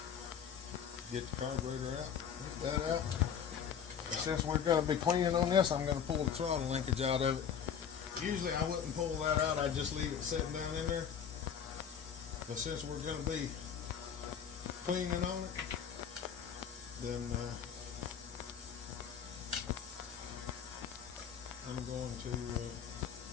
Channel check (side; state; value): right; quieter; 7.9 dB